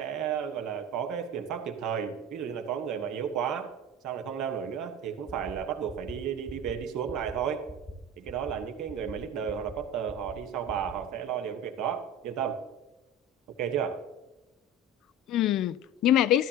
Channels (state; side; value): normal; both; correlation 0.31